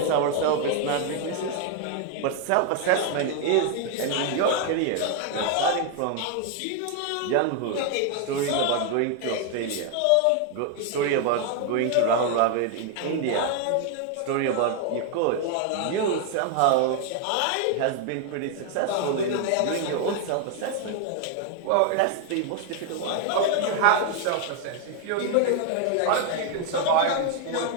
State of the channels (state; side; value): different; both; correlation 0.00